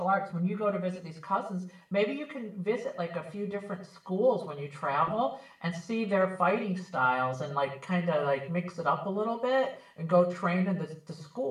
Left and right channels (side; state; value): both; identical; correlation 1.00